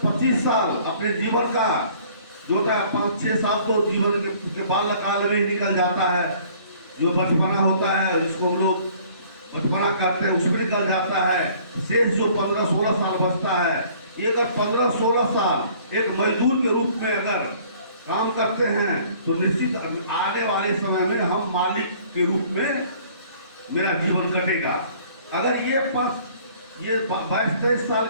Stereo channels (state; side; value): inverted; both; correlation -0.55